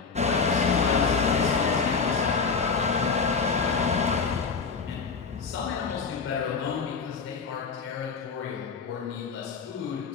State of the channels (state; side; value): quieter; right; 5.2 dB